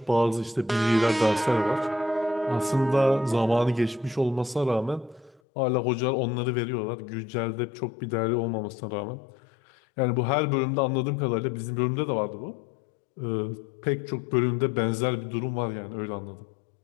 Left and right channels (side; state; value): right; drops out; at 5.4 s